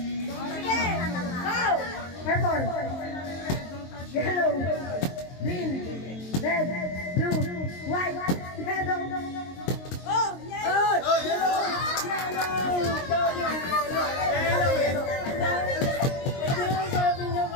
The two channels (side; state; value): right; late; 22 ms